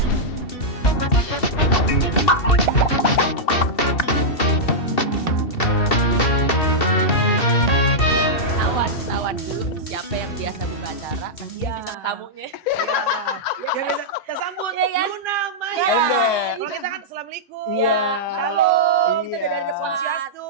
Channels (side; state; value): right; late; 2.7 ms